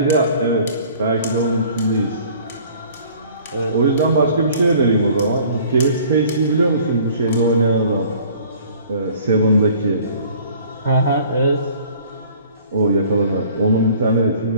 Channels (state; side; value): inverted; both; correlation -0.52